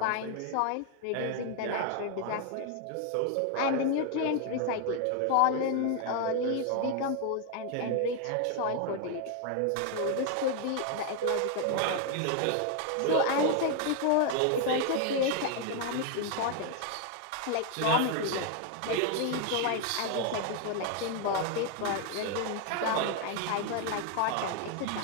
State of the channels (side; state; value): both; different; correlation 0.01